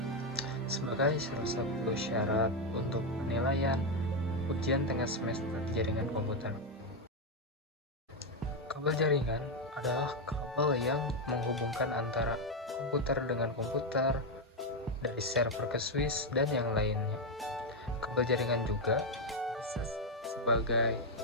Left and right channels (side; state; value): both; normal; correlation 0.05